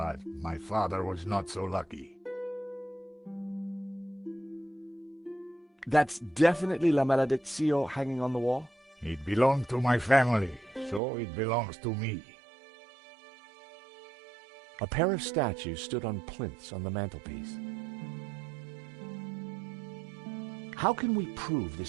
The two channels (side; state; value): left; drops out; at 11.0 s